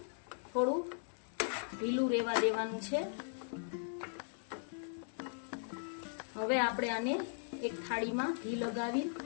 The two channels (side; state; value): right; silent; 52 dB below the other